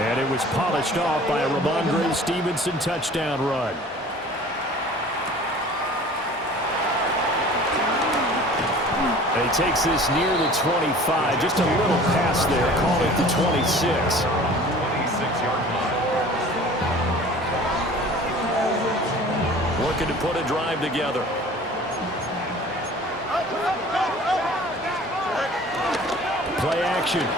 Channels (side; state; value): both; normal; correlation 0.45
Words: it was polished off by a Ramondre Stevenson touchdown run. And he takes this near the 25. Just a little pass there. Call it the 26. 26-yard line. Looking to put a drive together. Play action.